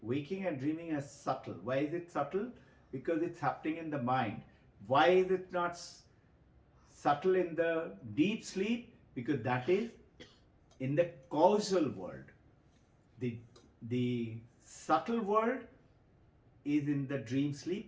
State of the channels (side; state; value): both; identical; correlation 1.00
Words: waking and dreaming, are subtle. Why is it subtle? Because it's happening in the mind. Why is it not subtle in the deep sleep? Because that is in the causal world. The subtle world is in the dream